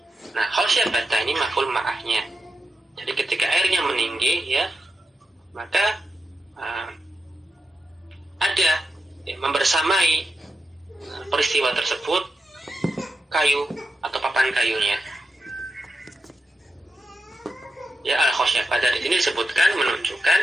Nah, khasyabata ini maf'ul ma'ahnya. Jadi ketika airnya meninggi, ya, maka ada, ya, membersamai peristiwa tersebut kayu atau papan kayunya. Ya, al-khasyabah di sini disebutkan menunjukkan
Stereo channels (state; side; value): normal; both; correlation 0.88